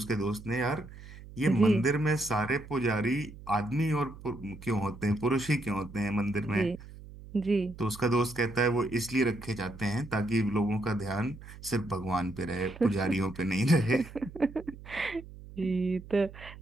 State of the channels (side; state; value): right; noise; hum, 16 dB below the sound